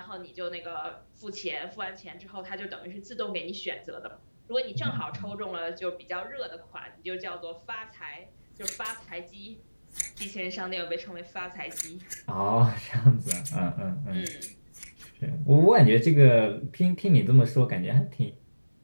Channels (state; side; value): inverted; both; correlation -1.00